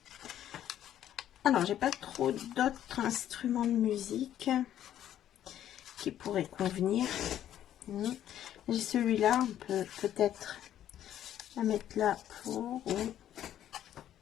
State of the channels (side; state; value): right; quieter; 11.3 dB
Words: Alors, j'ai pas trop d'autres instruments de musique qui pourraient convenir. J'ai celui-là, on peut peut-être la mettre là pour...